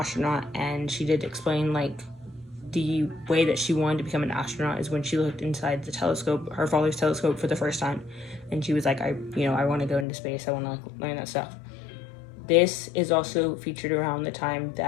and she did explain like the way that she wanted to become an astronaut is when she looked inside the telescope, her father's telescope, for the first time, and she was like, I want to go into space, I want to like learn that stuff. This is also featured around the time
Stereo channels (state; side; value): drops out; right; at 10.1 s